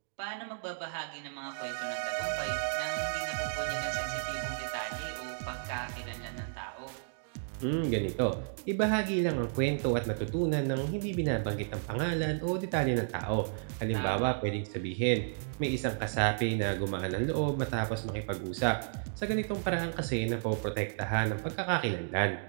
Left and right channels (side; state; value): left; silent; digital silence